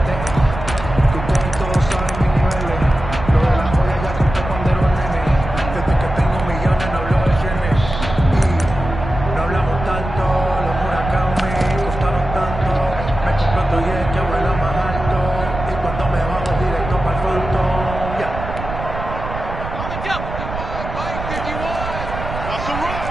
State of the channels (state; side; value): noise; right; rumble, 8 dB below the sound